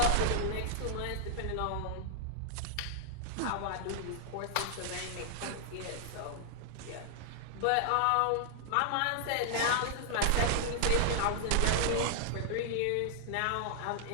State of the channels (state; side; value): different; both; correlation -0.01